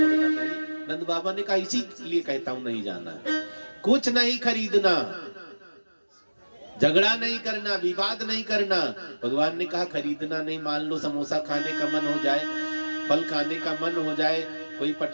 नहीं। नंद बाबा ने कहा इसी लिए कहता हूँ नहीं जाना है, कुछ नहीं खरीदना, झगड़ा नहीं करना, विवाद नहीं करना। भगवान ने कहा खरीदना नहीं, मान लो समोसा खाने का मन हो जाए, फल खाने का मन हो जाए, कोई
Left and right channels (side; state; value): both; inverted; correlation -1.00